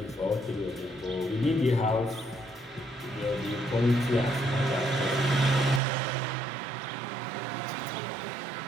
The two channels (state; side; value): drops out; left; at 5.8 s